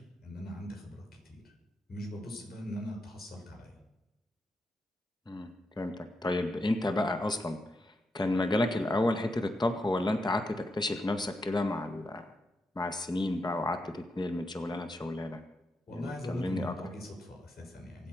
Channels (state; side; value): normal; both; correlation 0.84